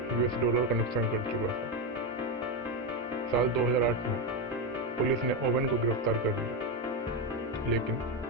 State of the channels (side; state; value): both; normal; correlation 0.10